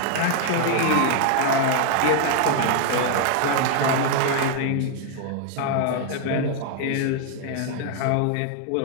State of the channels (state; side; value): different; both; correlation 0.00